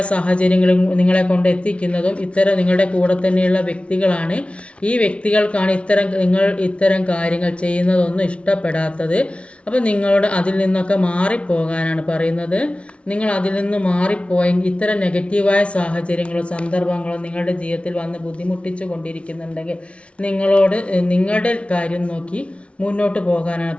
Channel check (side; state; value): right; late; 0.061 ms